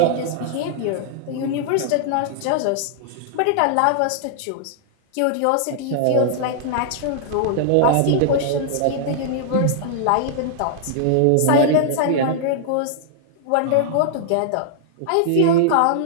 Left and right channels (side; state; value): both; different; correlation -0.01